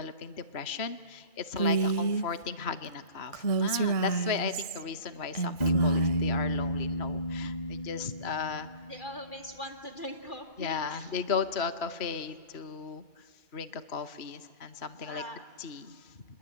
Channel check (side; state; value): right; late; 2.3 ms